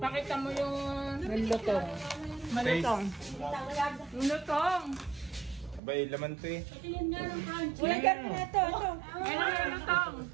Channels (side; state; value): left; drops out; at 5.8 s